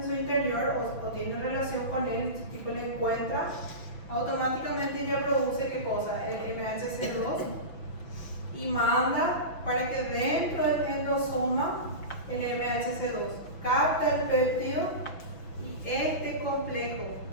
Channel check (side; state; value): right; late; 6.0 ms